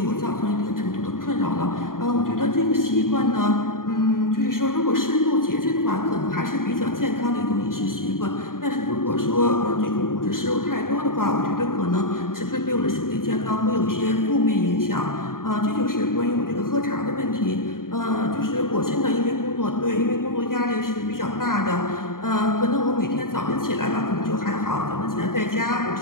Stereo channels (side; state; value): right; late; 0.91 ms